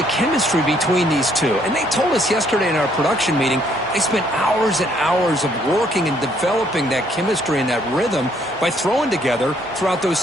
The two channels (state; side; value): normal; both; correlation 0.67